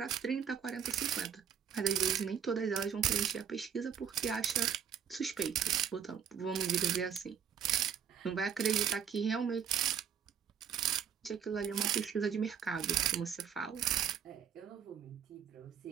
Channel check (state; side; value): quieter; left; 7.9 dB